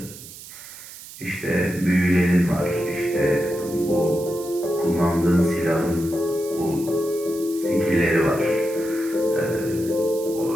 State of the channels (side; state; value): right; noise; hiss, 15 dB below the sound